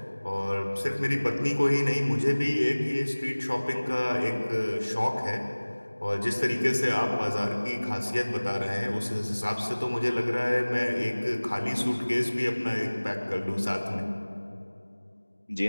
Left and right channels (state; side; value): inverted; both; correlation -1.00